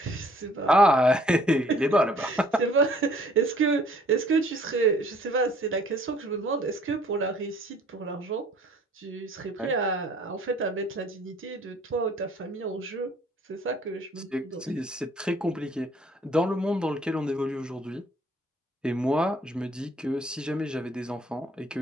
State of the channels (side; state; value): both; normal; correlation 0.58